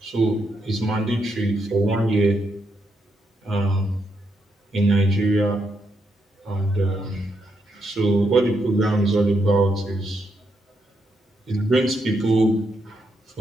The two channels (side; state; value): both; normal; correlation 0.80